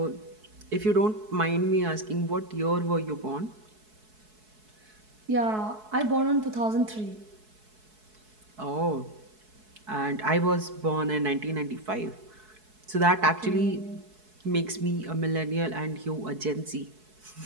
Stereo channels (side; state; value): left; late; 4.7 ms